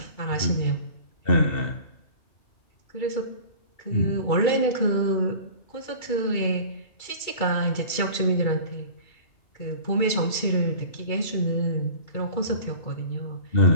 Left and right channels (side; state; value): right; late; 2.3 ms